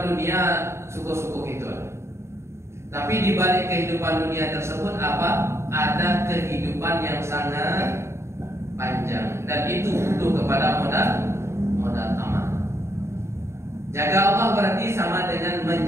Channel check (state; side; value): late; left; 0.13 ms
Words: dunia suku-suku gitu. Tapi di balik kehidupan dunia tersebut apa? Ada kehidupan yang sangat panjang dan itu butuh kepada modal amal. Jaga Allah berarti sama dengan